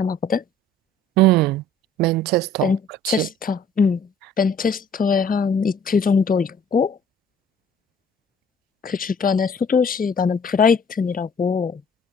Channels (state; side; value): normal; both; correlation 0.54